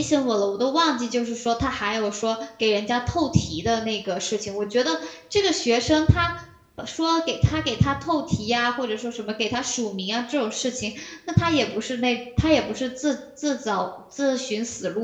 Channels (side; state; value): both; identical; correlation 1.00